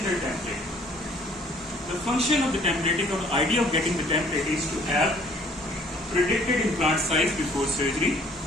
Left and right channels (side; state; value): both; normal; correlation 0.58